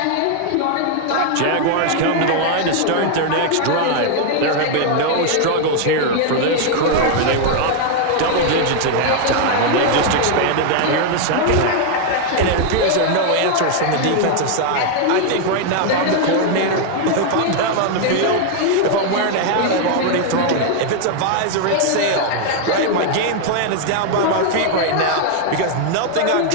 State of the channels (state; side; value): different; both; correlation 0.00